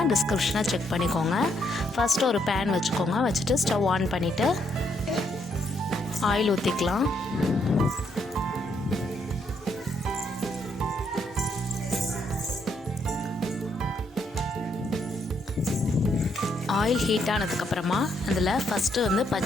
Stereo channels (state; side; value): normal; both; correlation 0.74